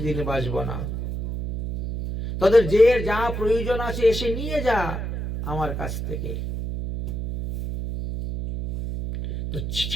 দিন বাঁচবো না, তাদের যে যা প্রয়োজন আছে এসে নিয়ে যা আমার কাছ থেকে। তো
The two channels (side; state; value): right; noise; hum, 4 dB below the sound